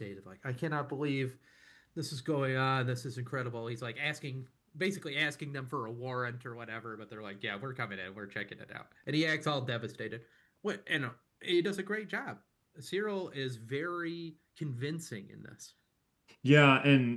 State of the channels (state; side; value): identical; both; correlation 1.00